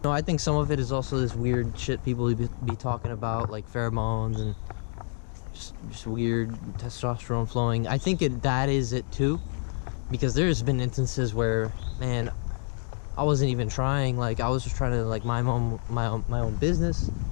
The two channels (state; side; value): silent; right; 60 dB below the other